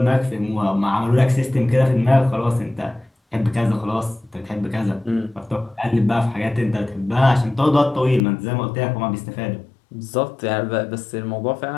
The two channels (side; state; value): right; drops out; at 8.2 s